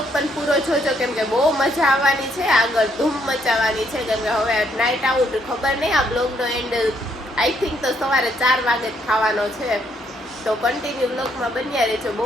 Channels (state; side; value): normal; both; correlation 0.71